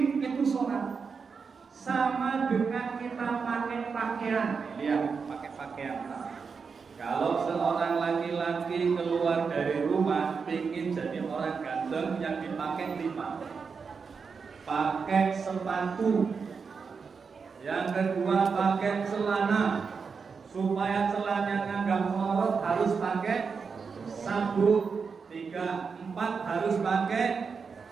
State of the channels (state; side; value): quieter; left; 5.5 dB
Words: itu sholat. Sama dengan kita pakai pakaian. Lihat, pakai pakaian. Kalau seorang laki-laki keluar dari rumah ingin jadi orang ganteng, yang dipakai 5. Pakai sepatu. Yang kedua pakai celana. Supaya celananya nggak melorot harus pakai sabuk. 3, 4 harus pakai